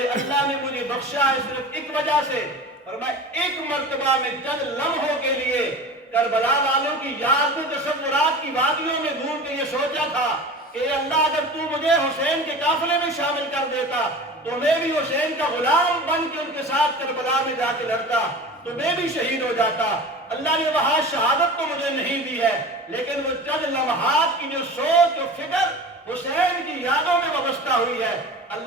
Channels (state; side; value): normal; both; correlation 0.35